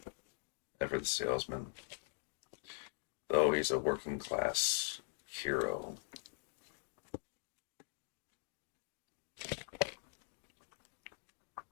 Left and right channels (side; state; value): right; silent; digital silence